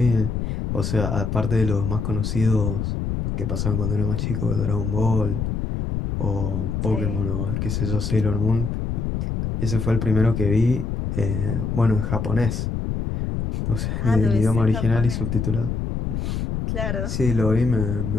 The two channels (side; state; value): left; noise; rumble, 2 dB below the sound